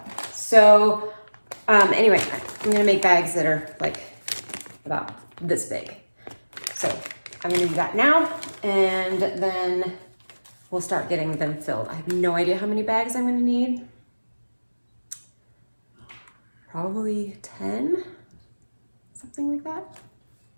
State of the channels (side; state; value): both; inverted; correlation -1.00